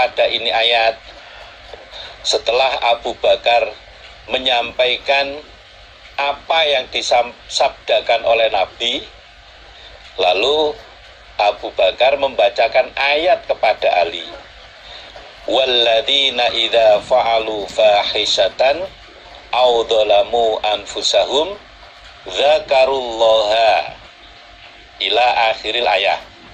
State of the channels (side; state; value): both; identical; correlation 1.00